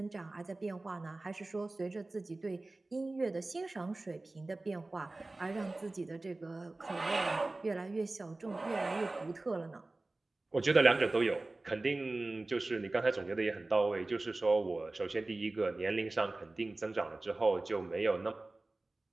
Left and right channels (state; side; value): quieter; left; 3.0 dB